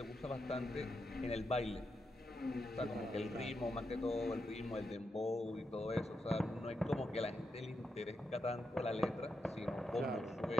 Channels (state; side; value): normal; both; correlation 0.86